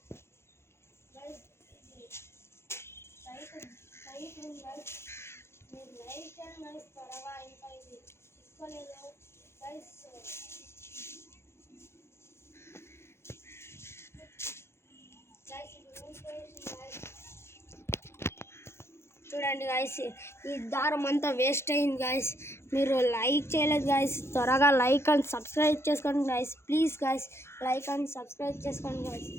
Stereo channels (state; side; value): late; right; 0.12 ms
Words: లైట్ ఉంది గైస్, మీరు లైక్ చేయండి గైస్ త్వరగా. ఇంకా ఇది చిక్కలేదు గైస్. చూడండి గైస్, ఈ దారం అంతా వేస్ట్ అయింది గైస్. మీరు లైక్ చేయలేదు గైస్, త్వరగా లైక్ అండ్ సబ్స్క్రైబ్ చేసుకోండి guys. Please guys, like and subscribe చేసుకోండి గైస్.